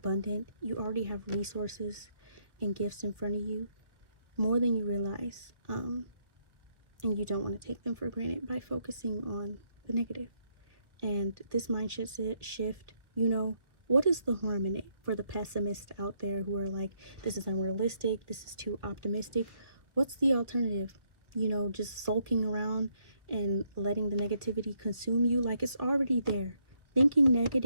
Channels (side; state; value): left; late; 1.1 ms